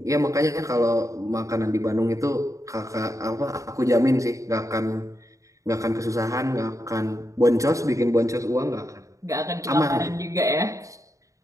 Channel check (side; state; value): left; late; 0.16 ms